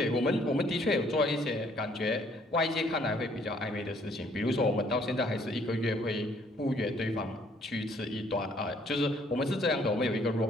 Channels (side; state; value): both; normal; correlation 0.63